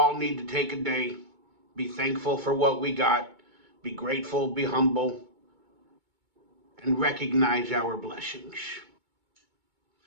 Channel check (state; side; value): late; left; 2.2 ms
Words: need to take a day, be thankful for what we got, be grateful, be humble, and recognize our blessings.